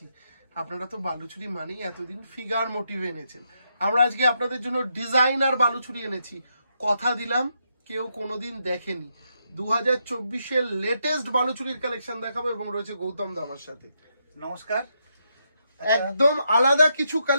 আপনারা তো বালুচুরি মানেই এতদিন ফিগার মোটিভ এনেছেন, আমরা আজকে আপনাদের জন্য ডিজাইনার বালুচুরি এনেছি। কথা দিলাম কেউ কোনোদিন দেখেনি। 2024-এর লেটেস্ট বালুচুরির কালেকশন দেখাবো এবং রয়েছে গৌতম দা আমার সাথে। নমস্কার। একদম আলাদা কিছু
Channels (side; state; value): both; inverted; correlation -0.81